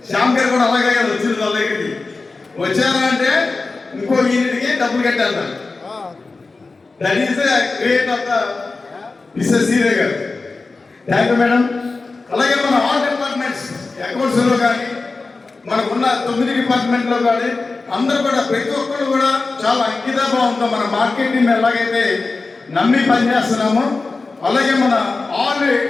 శ్యామ్ గారు కూడా అలాగే కదా వచ్చింది వాళ్ళ దగ్గరికి. వచ్చారా అంటే ఇంకో యూనిట్కి డబ్బులు కట్టారు. That is the great of the Mrs Sridevi garu. Thank you madam. అలాగే మన ఆల్ డిపార్ట్మెంట్స్ అకౌంట్స్లో కానీ మనకున్న 9 డిపార్ట్మెంట్లో కానీ అందరూ కూడా ప్రతి ఒక్కరు కూడా చాలా అంకితభావంతో మన మార్కెటింగ్ ఎలాగైతే నమ్మి పనిచేస్తున్నామో అలాగే మన ఆల్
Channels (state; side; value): quieter; right; 3.8 dB